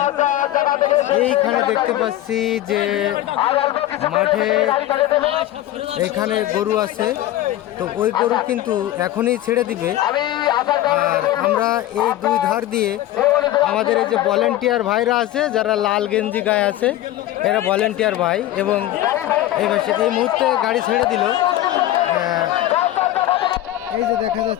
এইখানে দেখতে পাচ্ছি যে মাঠে এখানে গরু আছে, তো ওই গরু কিন্তু এখনই ছেড়ে দিবে। আর আমরা এই দুই ধার দিয়ে আমাদের এই যে ভলেন্টিয়ার ভাইরা আছে, যারা লাল গেঞ্জি গায়ে আছে, এরা ভলেন্টিয়ার ভাই। এবং এই মুহূর্তে গাড়ি ছেড়ে দিল। এই যে দেখা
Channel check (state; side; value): quieter; right; 14.2 dB